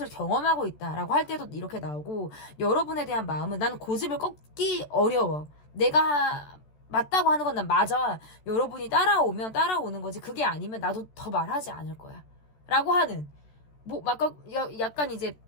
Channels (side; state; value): right; late; 14 ms